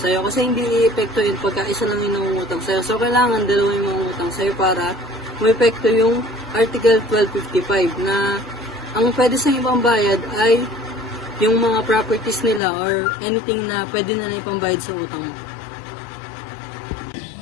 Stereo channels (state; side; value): drops out; right; at 12.6 s